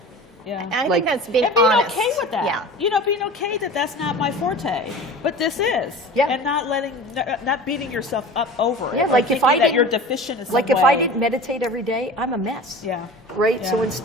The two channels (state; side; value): normal; both; correlation 0.37